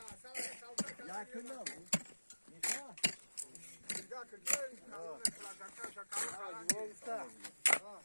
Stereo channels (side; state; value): both; inverted; correlation -1.00